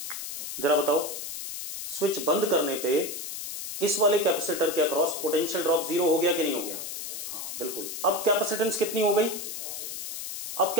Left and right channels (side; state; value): left; noise; hiss, 7 dB below the sound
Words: जरा बताओ। स्विच बंद करने पे इस वाले कैपेसिटर के अक्रॉस पोटेंशियल ड्रॉप 0 हो गया कि नहीं हो गया, हाँ बिल्कुल। अब कैपेसिटेंस कितनी हो गई, अब